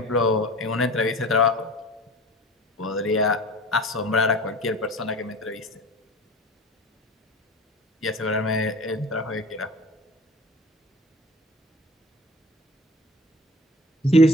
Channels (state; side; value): normal; both; correlation 0.40